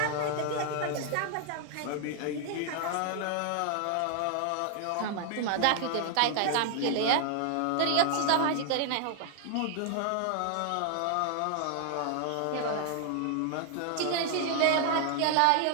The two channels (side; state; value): both; different; correlation 0.00